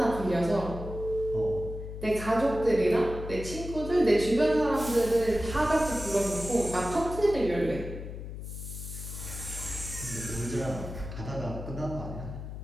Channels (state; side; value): noise; left; hum, 9 dB below the sound